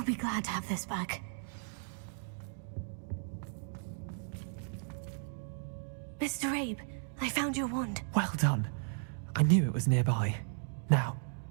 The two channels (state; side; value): silent; left; digital silence